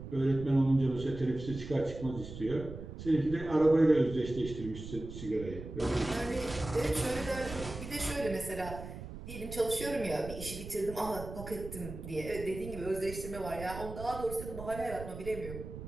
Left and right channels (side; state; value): right; noise; rumble, 10 dB below the sound